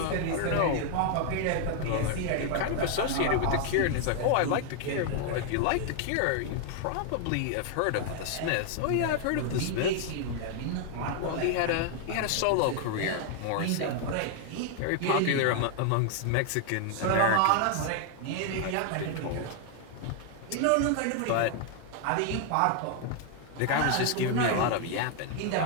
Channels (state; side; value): different; both; correlation 0.00